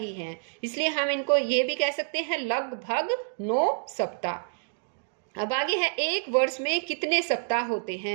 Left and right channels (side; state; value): left; silent; digital silence